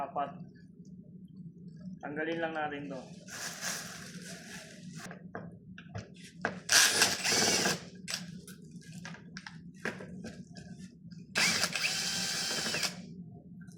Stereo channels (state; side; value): identical; both; correlation 1.00